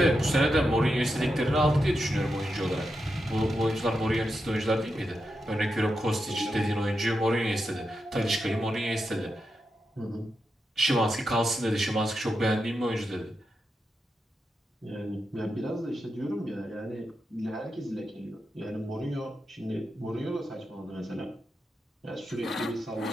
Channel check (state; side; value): normal; both; correlation 0.87